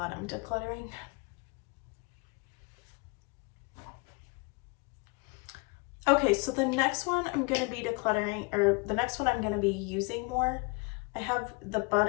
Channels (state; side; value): quieter; right; 28.8 dB